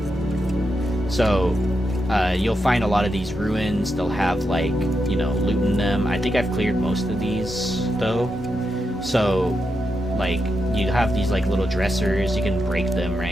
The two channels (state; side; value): normal; both; correlation 0.85